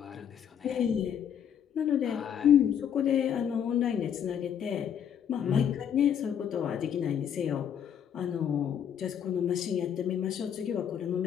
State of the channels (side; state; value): right; quieter; 8.7 dB